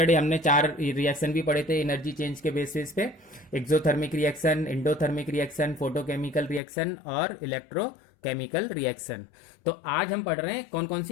हमने चार रिएक्शन भी पढ़े थे एनर्जी चेंज के बेसिस पे. Exothermic reaction, endothermic reaction, photochemical reaction और इलेक्ट्रोकेमिकल रिएक्शन. तो आज हम पढ़ रहे हैं कौन कौन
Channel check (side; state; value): right; drops out; at 6.6 s